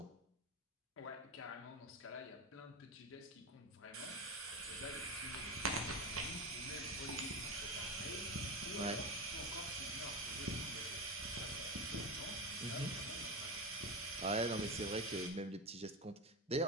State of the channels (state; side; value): normal; both; correlation 0.19